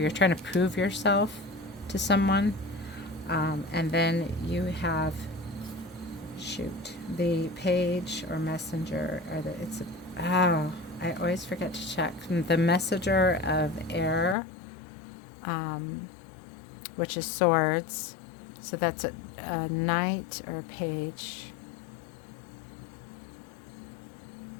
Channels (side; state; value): right; drops out; at 14.4 s